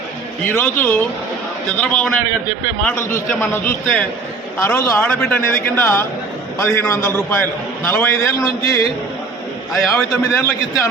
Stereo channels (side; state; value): left; quieter; 4.1 dB